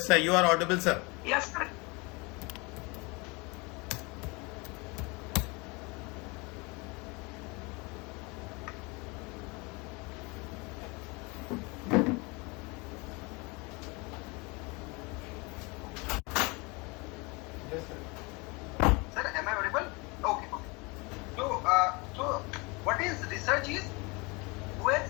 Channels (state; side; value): quieter; right; 27.5 dB